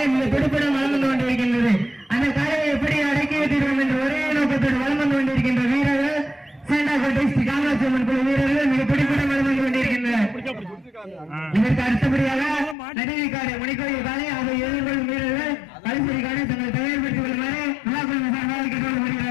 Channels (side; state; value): right; drops out; at 12.8 s